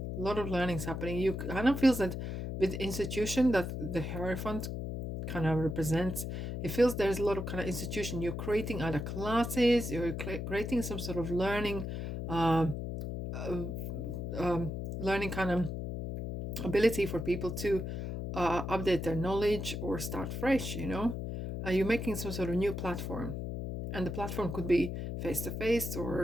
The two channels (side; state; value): left; noise; hum, 4 dB below the sound